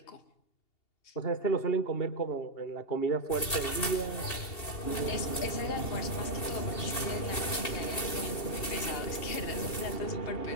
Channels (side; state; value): right; late; 2.7 ms